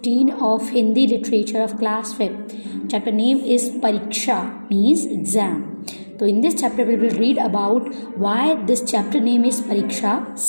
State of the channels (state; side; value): inverted; both; correlation -1.00